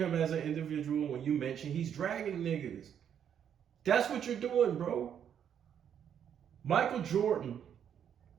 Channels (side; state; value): left; quieter; 8.8 dB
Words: as an individual when you mention he's dragging niggas. That's what you're doing, bro. Michael Jordan